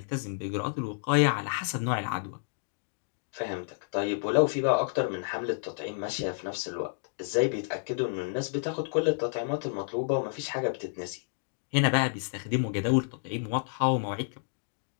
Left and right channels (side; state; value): right; silent; digital silence